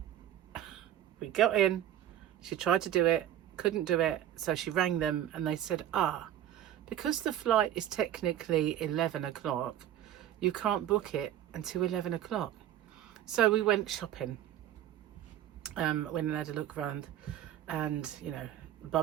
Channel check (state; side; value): quieter; left; 11.7 dB